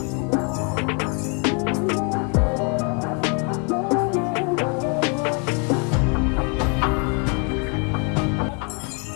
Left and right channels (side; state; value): right; quieter; 36.4 dB